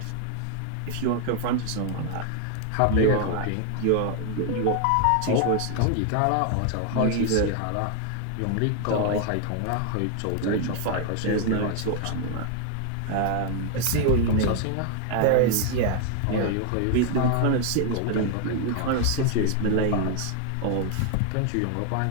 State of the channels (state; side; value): different; both; correlation 0.00